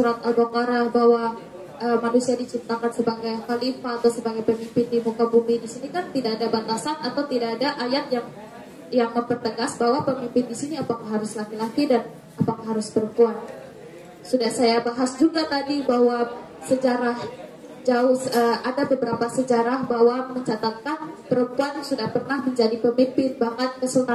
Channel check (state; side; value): identical; both; correlation 1.00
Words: Al-Baqarah bahwa manusia diciptakan sebagai khalifah atau sebagai pemimpin di muka bumi. Di sini kan tidak ada batasan atau tidak ada ayat yang mempertegas bahwa pemimpin di sini apakah harus laki-laki dan apakah harus perempuan. Sudah saya bahas juga tadi bahwa sejarah ada beberapa sejarah bahwa mencatatkan perempuan sudah pernah menjadi pemimpin, bahkan